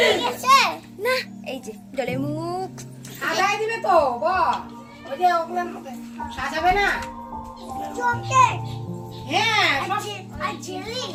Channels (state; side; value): identical; both; correlation 1.00